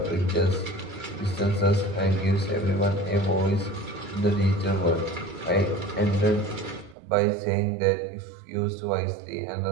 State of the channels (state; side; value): drops out; left; at 7.0 s